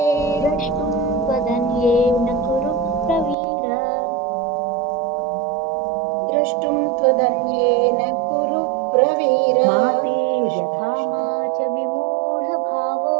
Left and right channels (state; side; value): drops out; left; at 3.4 s